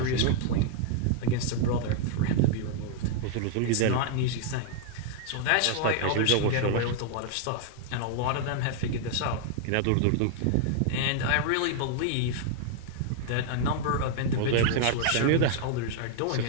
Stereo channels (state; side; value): different; both; correlation 0.00